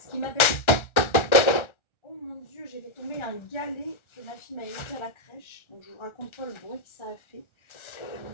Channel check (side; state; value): right; late; 1.4 ms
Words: qui m'appelle... Oh mon Dieu, j'ai fait tomber un galet que ma fille m'a laissé à la crèche. Donc, je vous raconte pas le bruit que ça a fait.